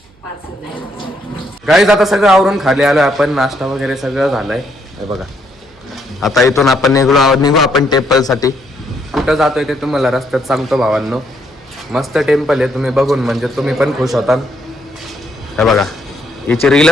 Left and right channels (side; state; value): right; noise; hum, 29 dB below the sound